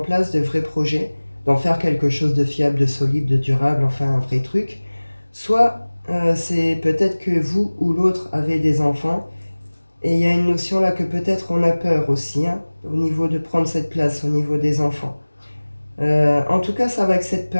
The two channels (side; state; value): both; inverted; correlation -1.00